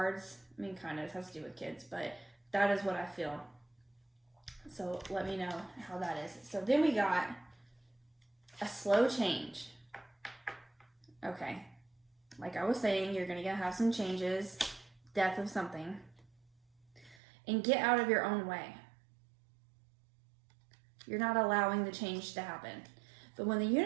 I mean, kind of, it has to do with kids, but that is what I feel. So let me know how that is. So then we got a slow change. Okay. Like I was saying, you're going to have some changes, death of something, and get out of your own way. You're not allowing the change to happen. But when the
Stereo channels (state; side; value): drops out; left; at 17.2 s